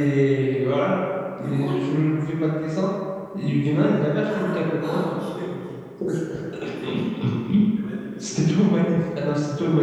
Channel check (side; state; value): both; identical; correlation 1.00